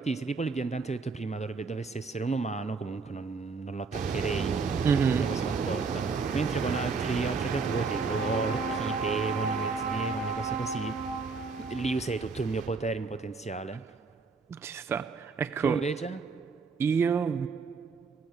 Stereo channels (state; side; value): quieter; left; 4.6 dB